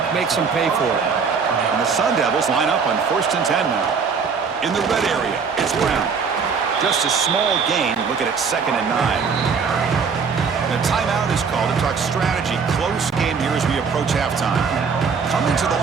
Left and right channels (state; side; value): quieter; left; 5.7 dB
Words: makes them pay for it. And the Sun Devils line up on 1st and 10 now. In the red area, it's Brown. Just a small gain. Looking at 2nd and 9. The timeout is called to talk strategy. Close game here as we approach halftime. Coming to the